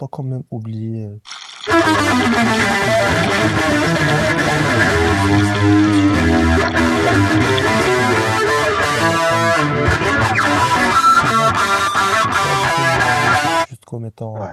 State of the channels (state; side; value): identical; both; correlation 1.00